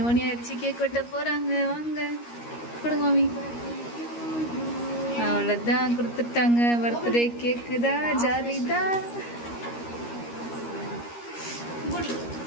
மணி ஆயிடுச்சு, கேக் வெட்ட போகிறாங்க. வாங்க கொடுங்க மாமி. அவ்வளோதான், கொடுத்துட்டாங்க. பர்த்டே கேக்கு தான், ஜாலி தான்.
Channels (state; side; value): late; right; 13 ms